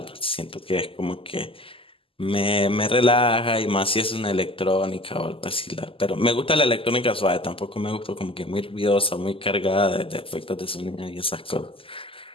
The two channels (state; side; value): late; right; 0.26 ms